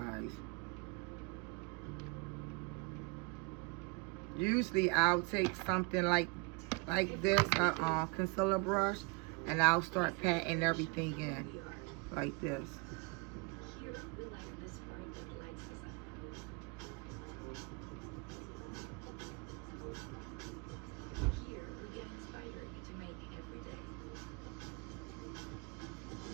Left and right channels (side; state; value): left; quieter; 28.8 dB